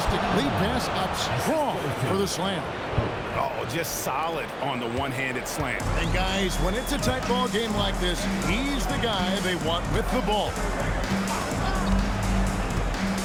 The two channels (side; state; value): both; identical; correlation 1.00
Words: lead pass up strong for the slam. Oh, just solid on the one-handed slam. And guys, when it's a tight ball game like this, he's the guy they want with the ball.